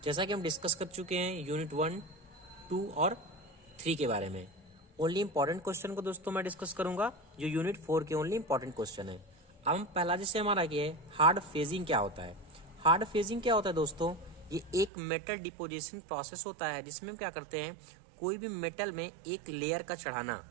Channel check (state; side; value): drops out; left; at 14.9 s